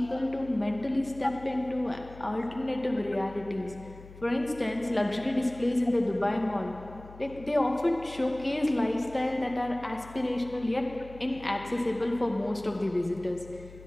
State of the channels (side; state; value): left; noise; hum, 18 dB below the sound